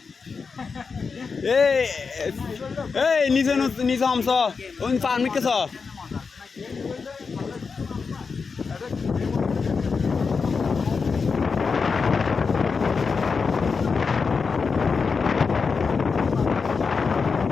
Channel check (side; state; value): right; quieter; 5.1 dB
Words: এই নিচে হামছ ওই পারমিট কেছ